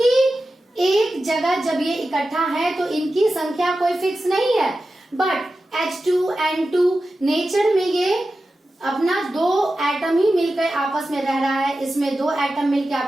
एक जगह जब ये इकट्ठा है तो इनकी संख्या कोई फिक्स नहीं है। बट H2N2 नेचर में ये अपना 2 एटम ही मिलकर आपस में रह रहा है, इसमें 2 एटम मिलकर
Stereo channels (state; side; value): normal; both; correlation 0.93